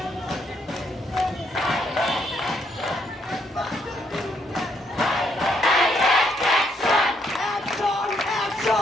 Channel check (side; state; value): both; normal; correlation 0.73